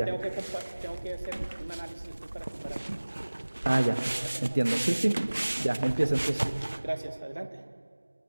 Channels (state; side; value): inverted; both; correlation -1.00